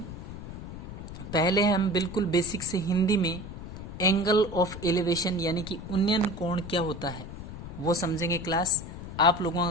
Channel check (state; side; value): noise; left; rumble, 11 dB below the sound